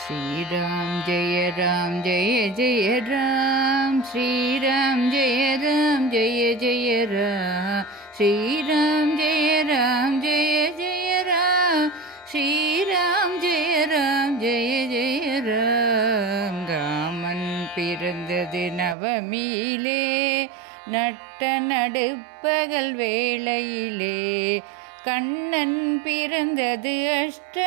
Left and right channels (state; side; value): drops out; left; at 18.9 s